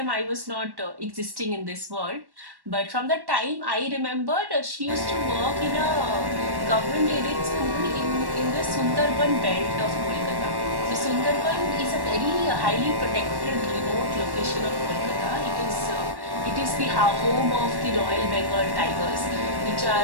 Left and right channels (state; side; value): late; left; 1.1 ms